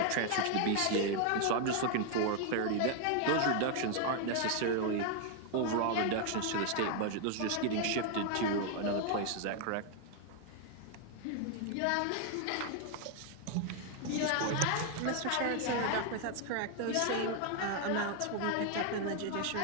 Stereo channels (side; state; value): both; different; correlation 0.00